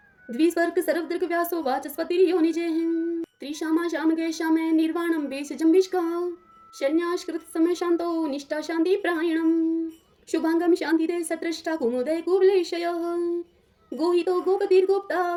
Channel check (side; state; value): both; identical; correlation 1.00